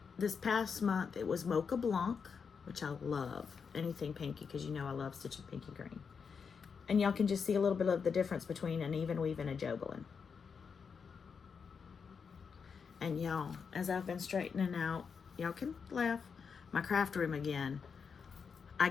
this past month, it was Mocha Blanc, which I love. Anything pinky, because you know I love stitching pinky green. And y'all can just see a little bit of the difference between an even weave and a Jobelin. And y'all, as I've been straightening out, y'all can laugh, my craft room again, I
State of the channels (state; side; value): quieter; right; 6.0 dB